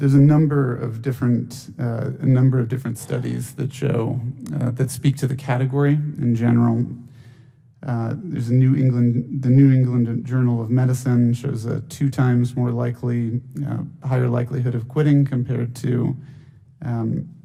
a number of different studies that show that speak to the category in general. There's the New England Journal of Medicine shows a 2 times more higher likelihood of quitting compared to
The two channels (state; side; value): identical; both; correlation 1.00